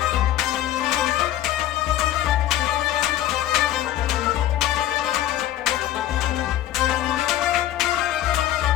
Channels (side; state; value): right; quieter; 13.2 dB